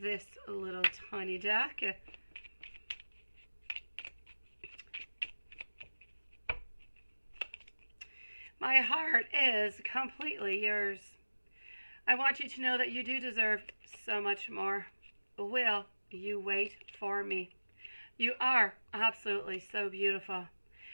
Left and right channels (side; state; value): both; inverted; correlation -1.00